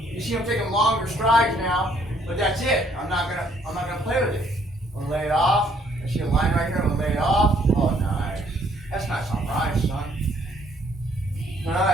see, I'm taking longer strides now, but that's it. I'm not gonna play with it. I'm gonna lay it off. I see a line right here. I'm gonna lay it off. Oh, nice. That's nice on rice, son. All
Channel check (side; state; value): both; normal; correlation 0.65